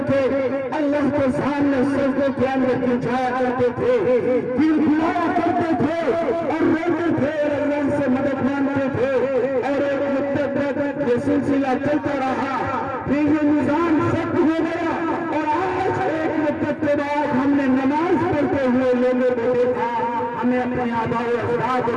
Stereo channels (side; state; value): both; identical; correlation 1.00